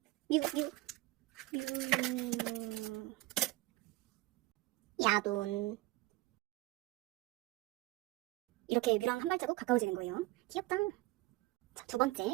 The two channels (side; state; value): left; quieter; 19.5 dB